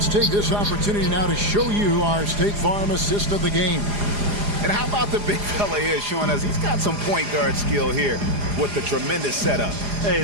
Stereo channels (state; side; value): late; left; 4.9 ms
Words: take this opportunity now to show you our State Farm assist of the game. And how about the big fella here showing us he's got some point guard skill here with the tremendous setup. Hey,